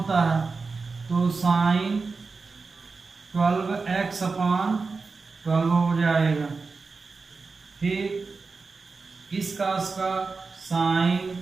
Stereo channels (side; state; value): left; quieter; 4.3 dB